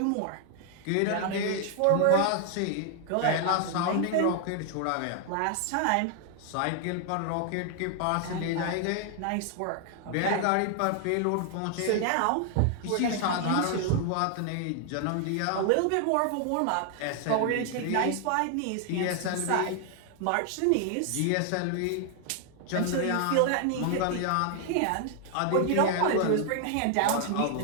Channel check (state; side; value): different; both; correlation 0.00